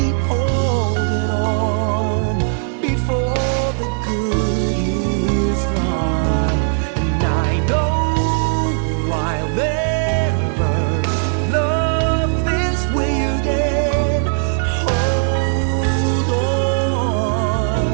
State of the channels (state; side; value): silent; left; digital silence